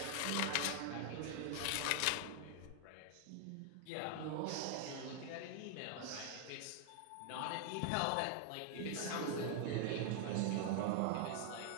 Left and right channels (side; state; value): both; different; correlation 0.00